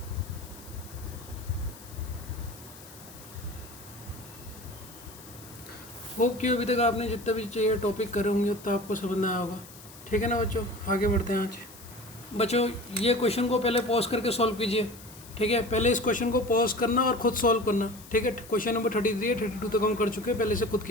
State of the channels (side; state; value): left; noise; hiss, 19 dB below the sound